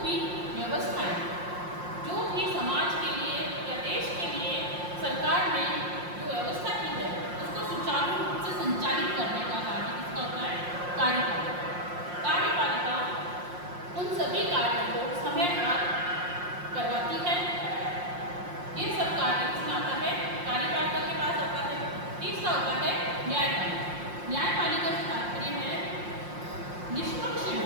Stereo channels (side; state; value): left; late; 5.6 ms